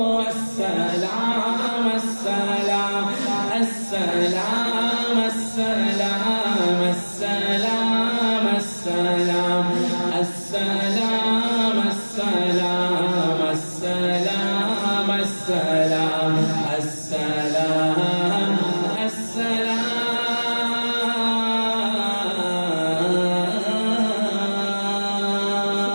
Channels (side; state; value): both; inverted; correlation -1.00